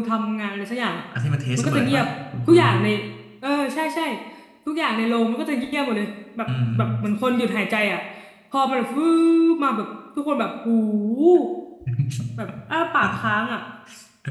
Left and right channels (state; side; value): identical; both; correlation 1.00